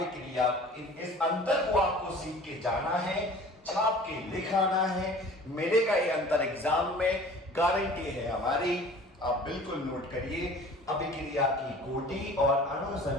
इस अंतर को आपको सीख के जाना है, छाप के लिखाना है। मिलेगा ये अंतर एग्जाम में, गारंटी है हमारी, आप बिल्कुल नोट करिए। अभिक्रिया की कोटि और अणु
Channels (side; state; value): both; normal; correlation 0.45